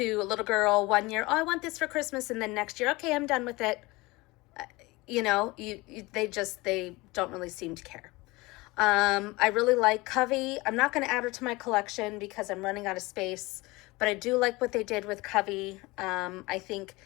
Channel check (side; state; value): right; quieter; 22.4 dB